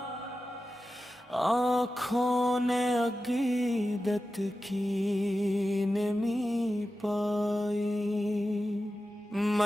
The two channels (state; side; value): normal; both; correlation 0.93